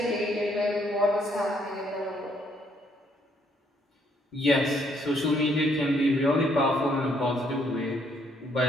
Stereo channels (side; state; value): both; normal; correlation 0.69